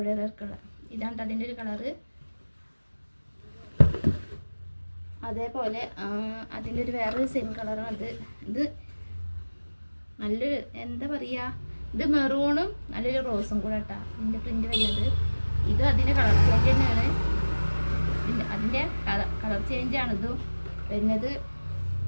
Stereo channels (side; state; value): both; inverted; correlation -1.00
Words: വർക്കുള്ള ഇതാണ് അതിൻ്റെ ഒരു കളറ്. അതേപോലെ അതിൻ്റെ ഒരു വേറൊരു സെയിം കളറാണ് ഇത് നല്ലൊരു എന്താ പറയുക, ഇത് മെറൂണും നല്ലൊരു റോസും കൂടെ കേട്ടോ ഇതിൻ്റെ പ്രിൻ്റ് വരുന്നത്. ഇത് അതിൻ്റെ കളർ ചേഞ്ച് തന്നെയാണ്. അതിൻ്റെ കളർ ചേഞ്ചാണ് ഇത് വരുന്നത്.